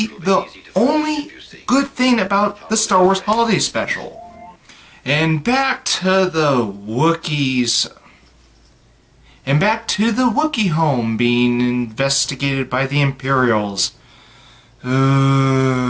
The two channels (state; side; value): identical; both; correlation 1.00